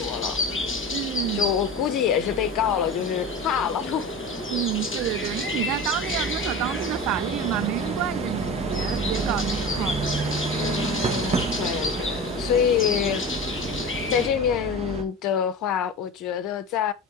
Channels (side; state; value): both; normal; correlation 0.30